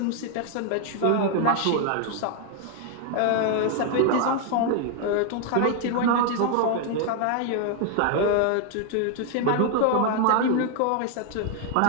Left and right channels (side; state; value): both; different; correlation 0.00